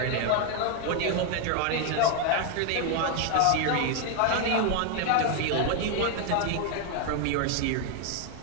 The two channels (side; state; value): both; different; correlation 0.01